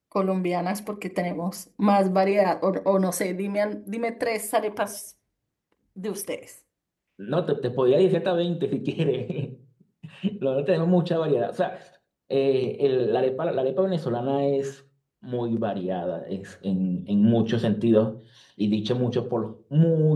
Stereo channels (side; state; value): both; identical; correlation 1.00